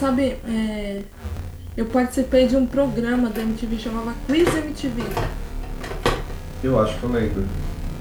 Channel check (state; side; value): identical; both; correlation 1.00